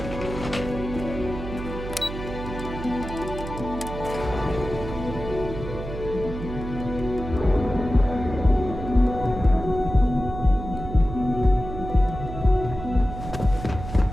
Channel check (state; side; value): noise; right; hum, 8 dB below the sound